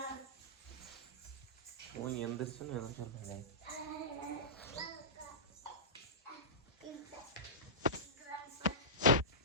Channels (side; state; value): both; normal; correlation -0.19